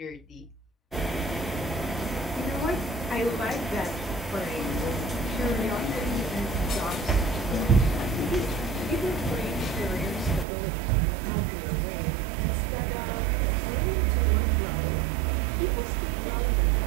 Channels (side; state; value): left; drops out; at 10.5 s